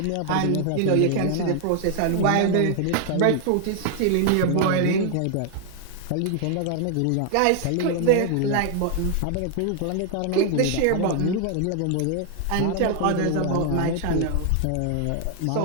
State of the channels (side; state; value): both; different; correlation 0.00